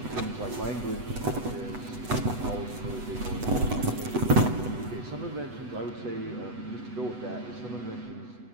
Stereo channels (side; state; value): left; late; 8.1 ms